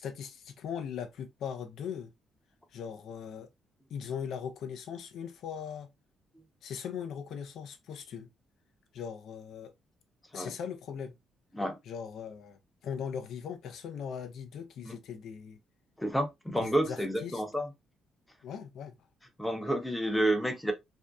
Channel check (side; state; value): both; normal; correlation 0.82